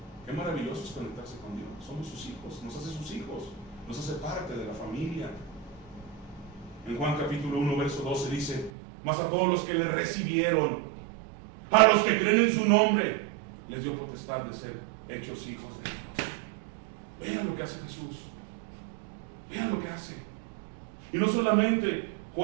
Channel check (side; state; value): left; drops out; at 8.7 s